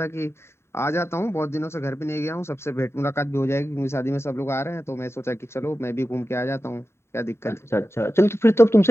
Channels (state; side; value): late; right; 0.12 ms